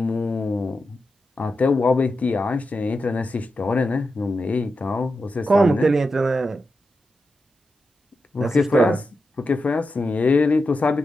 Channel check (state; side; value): normal; both; correlation 0.89